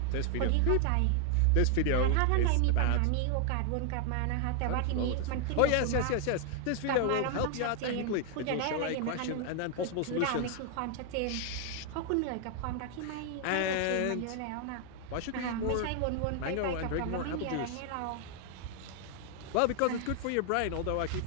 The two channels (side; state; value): both; different; correlation 0.00